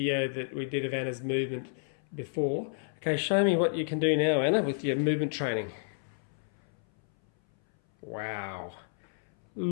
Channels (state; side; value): silent; right; 57 dB below the other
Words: that we did of Anna's movement before. Okay, show me what you can do now, Anna, with your movement training. Wow.